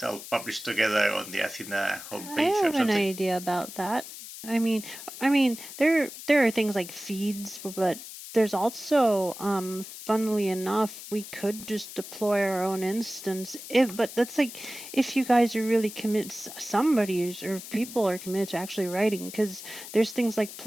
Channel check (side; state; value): left; noise; hiss, 12 dB below the sound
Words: all published together on the Athena homepage I or have an something? idea about that. I mean, there are things like feeds, but there's also, funnily enough, we could just deploy our own instance. But that's like if you guys are really committed, somebody is, or people are committed to actually writing, because there's things like